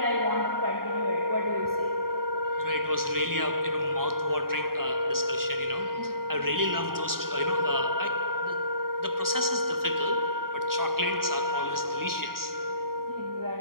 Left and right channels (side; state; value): left; late; 0.92 ms